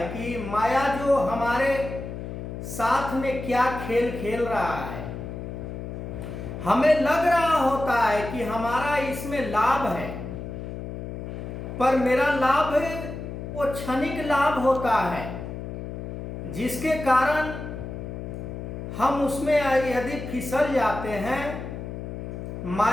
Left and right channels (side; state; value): left; noise; hum, 7 dB below the sound